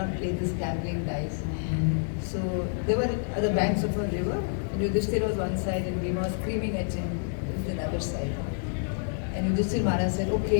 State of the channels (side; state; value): right; silent; digital silence